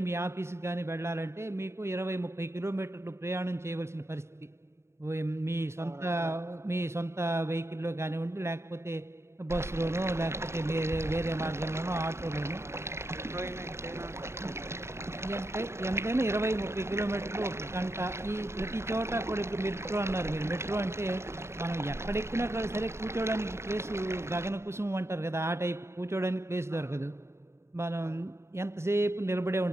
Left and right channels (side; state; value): left; late; 0.13 ms